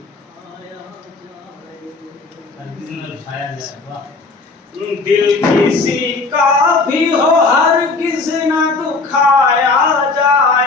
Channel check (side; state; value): right; quieter; 3.8 dB